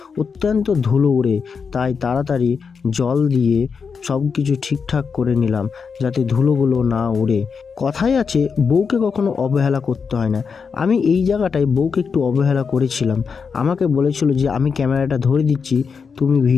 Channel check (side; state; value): right; quieter; 5.7 dB